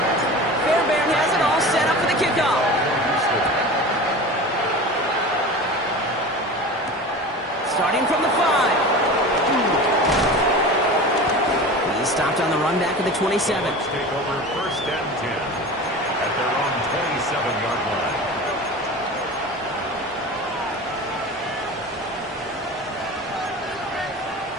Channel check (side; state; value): both; normal; correlation 0.33